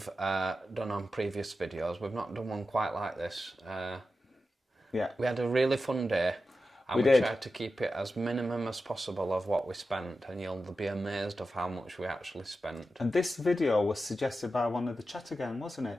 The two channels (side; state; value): both; normal; correlation 0.91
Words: done on previous videos. We've not done one quite like this. Yeah. We had a really fun day. And we tried to keep it as minimum as possible of what we spent, and you'll be amazed of how much we actually spent. And this video was suggested by one of the Chatter Gang, wasn't